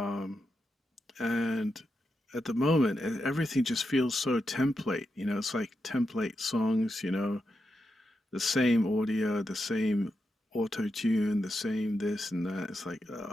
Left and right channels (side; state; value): both; normal; correlation 0.86